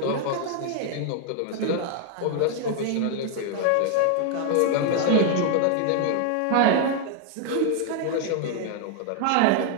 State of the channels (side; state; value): both; different; correlation 0.00